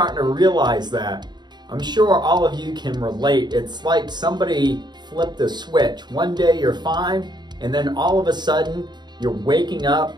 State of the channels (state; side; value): late; left; 0.21 ms